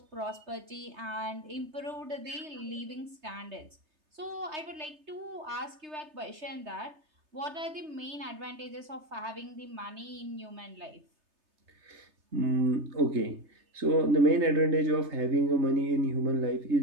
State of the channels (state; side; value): late; left; 3.3 ms